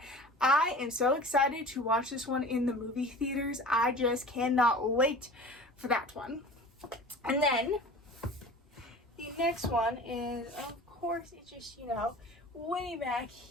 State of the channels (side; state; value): both; normal; correlation 0.40